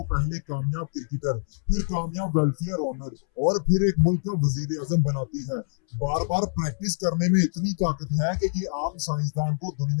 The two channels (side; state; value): right; silent; 61 dB below the other